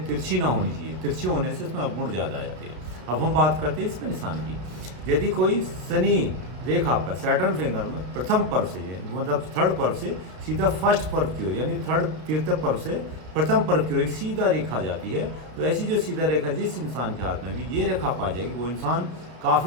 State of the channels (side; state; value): left; late; 33 ms